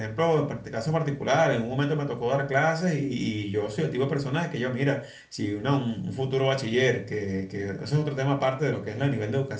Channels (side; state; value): both; identical; correlation 1.00